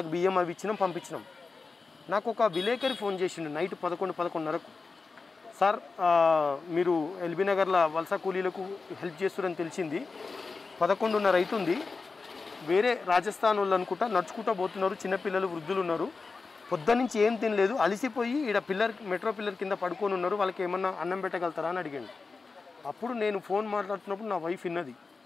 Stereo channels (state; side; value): quieter; right; 4.3 dB